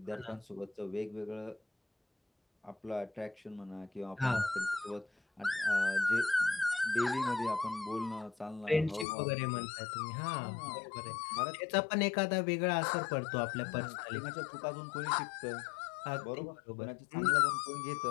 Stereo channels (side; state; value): right; drops out; at 9.1 s